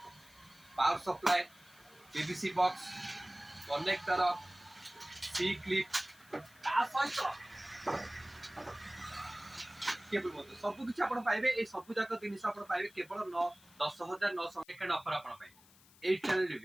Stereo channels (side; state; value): left; noise; hiss, 25 dB below the sound